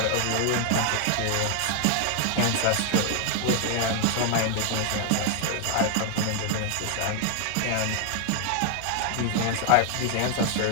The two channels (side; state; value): both; different; correlation 0.00